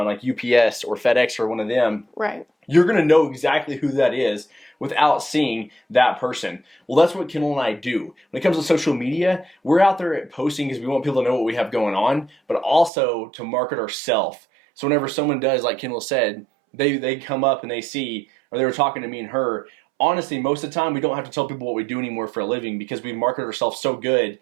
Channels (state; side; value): drops out; left; at 12.9 s